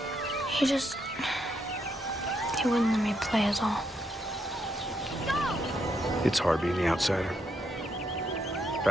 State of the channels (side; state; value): both; normal; correlation 0.78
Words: He wouldn't let me play is all. It's hard being the outsider. In